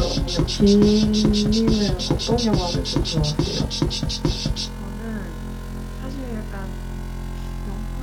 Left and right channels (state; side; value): identical; both; correlation 1.00